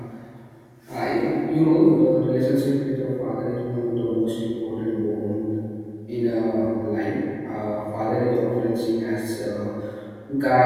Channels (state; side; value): identical; both; correlation 1.00